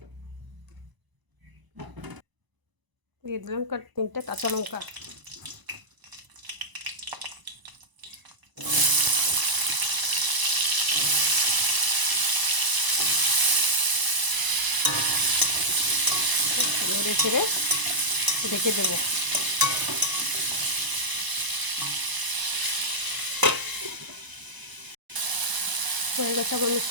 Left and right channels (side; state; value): left; late; 1.0 ms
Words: দিয়ে দিলাম 3টে কাঁচা লঙ্কা। নেড়ে ছেড়ে ঢেকে দেবো। হয়ে গেছে আমার